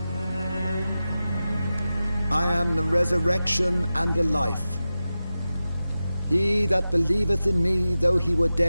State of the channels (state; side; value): inverted; both; correlation -0.93